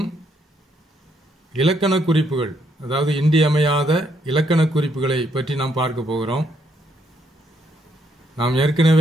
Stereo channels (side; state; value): both; normal; correlation 0.73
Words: இலக்கண குறிப்புகள், அதாவது இன்றியமையாத இலக்கண குறிப்புகளை பற்றி நாம் பார்க்க போகிறோம். நாம்